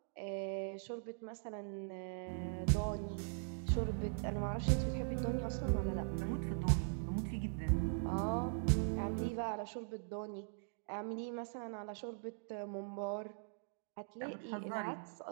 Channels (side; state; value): left; silent; digital silence